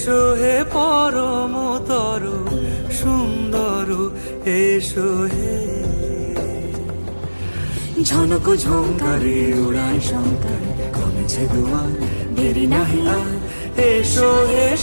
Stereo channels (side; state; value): both; inverted; correlation -1.00